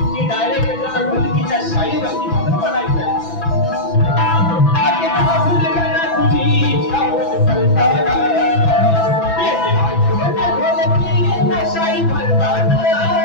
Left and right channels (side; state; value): right; late; 6.0 ms